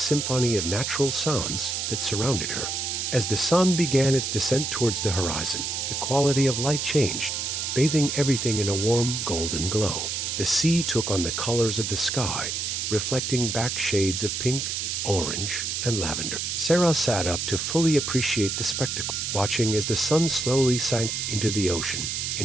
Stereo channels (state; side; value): noise; right; hiss, 2 dB below the sound